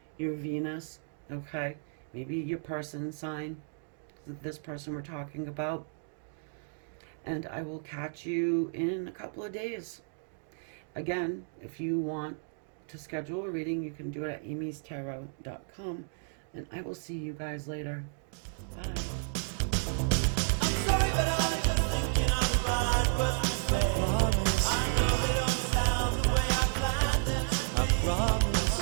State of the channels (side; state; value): left; silent; 56 dB below the other